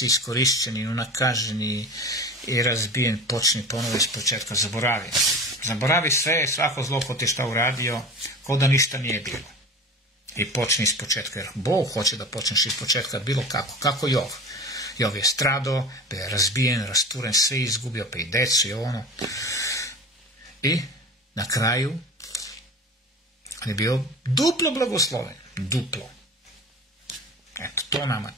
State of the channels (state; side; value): normal; both; correlation 0.34